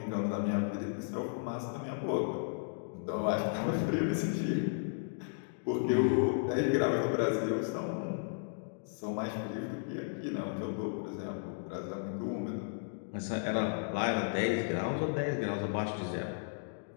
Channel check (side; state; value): right; silent; digital silence